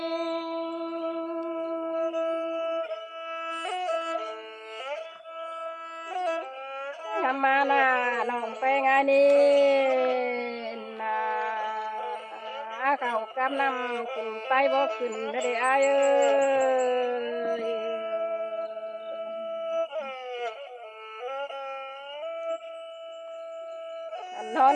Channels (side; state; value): both; identical; correlation 1.00